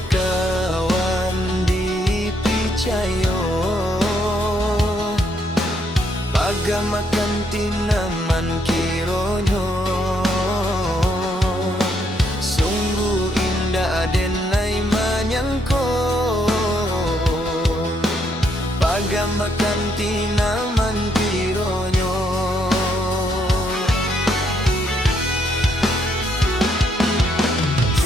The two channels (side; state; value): both; normal; correlation 0.73